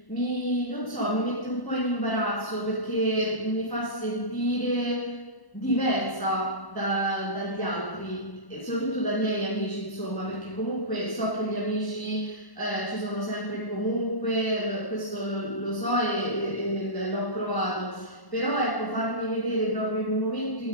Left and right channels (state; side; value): late; right; 1.1 ms